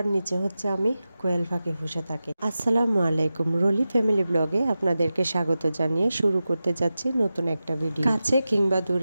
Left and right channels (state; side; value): inverted; both; correlation -0.93